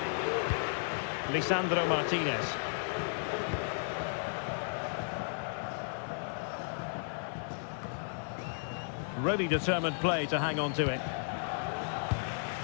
Lisandro Martinez. Really determined play to hang on to it.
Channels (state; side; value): silent; right; digital silence